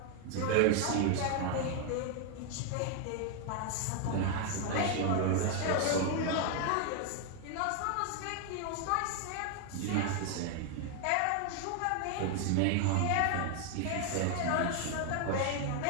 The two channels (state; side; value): different; both; correlation 0.00